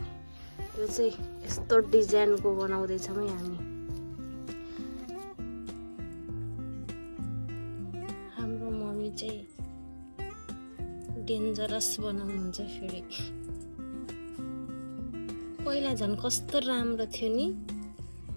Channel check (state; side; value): inverted; both; correlation -1.00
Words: यो चाहिँ यस्तो डिजाइनको बनाउँदैछौँ है हामी। हाम्रो मम्मी चाहिँ डेन्जरस बनाउनुहुन्छ फेरि। पहिला झन् कस्तो राम्रो थियो नि